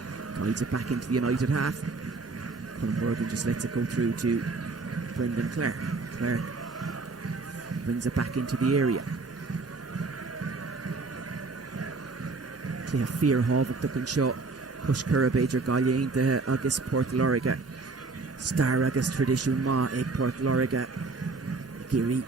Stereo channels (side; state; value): left; quieter; 3.9 dB